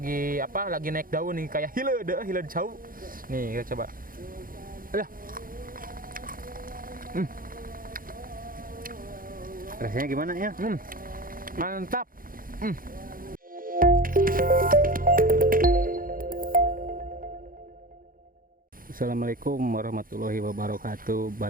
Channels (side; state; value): left; late; 0.41 ms